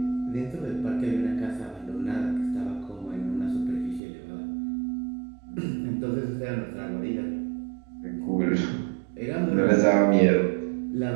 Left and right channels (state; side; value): drops out; left; at 4.0 s